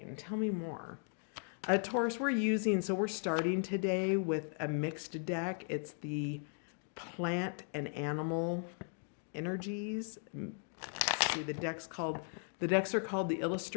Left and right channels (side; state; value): right; silent; 53 dB below the other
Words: Tell me more. Taurus, we're starting today with a mixed deck. It's the plant and animal energies. Let's see, the decks are called the